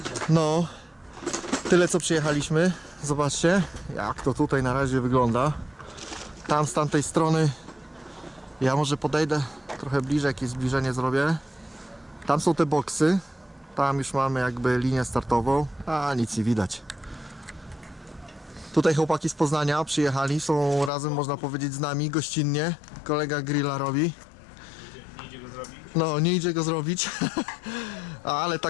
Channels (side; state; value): right; drops out; at 20.9 s